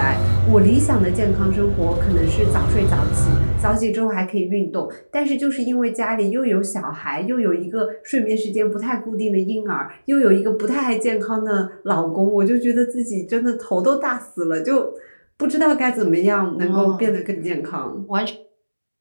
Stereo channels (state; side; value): inverted; both; correlation -1.00